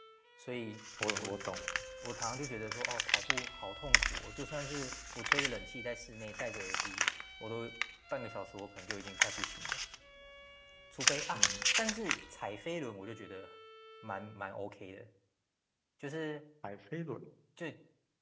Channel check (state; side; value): identical; both; correlation 1.00